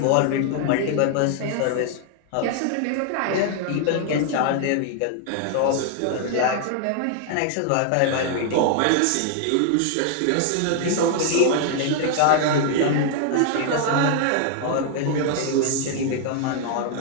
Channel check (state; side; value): different; both; correlation 0.00